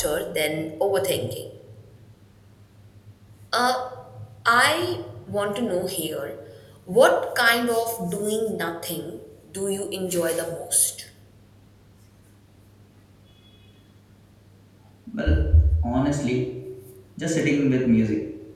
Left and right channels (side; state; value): both; identical; correlation 1.00